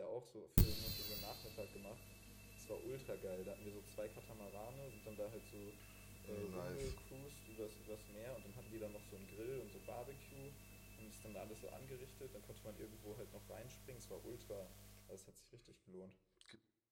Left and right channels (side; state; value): both; identical; correlation 1.00